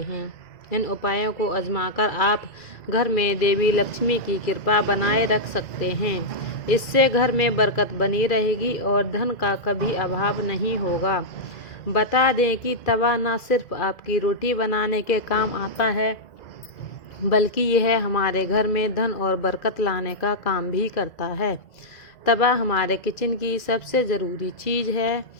हैं। इन उपायों को आजमाकर आप घर में देवी लक्ष्मी की कृपा बनाए रख सकते हैं। इससे घर में बरकत बनी रहेगी और धन का कभी अभाव नहीं होगा। बता दें कि तवा न सिर्फ आपकी रोटी बनाने के काम आता है, बल्कि यह हमारे घर में धन और बरकत लाने का काम भी करता है। तवा हमारे किचन की सबसे ज़रूरी चीज़ है।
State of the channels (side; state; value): right; late; 2.0 ms